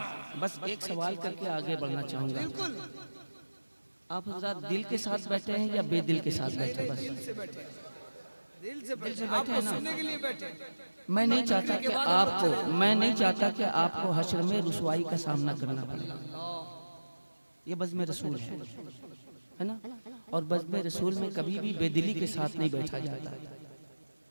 बस एक सवाल करके आगे बढ़ना चाहूंगा। आप हज़रात दिल के साथ बैठे हैं या बेदिल के साथ बैठे? बस दिल से बैठे हैं ना। मैं नहीं चाहता कि आपको हश्र में रुसवाई का सामना करना पड़े। ये बज़्म रसूल है ना, और बज़्म रसूल में कभी भी बेदिली के साथ नहीं बैठा जाता।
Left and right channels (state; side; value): inverted; both; correlation -1.00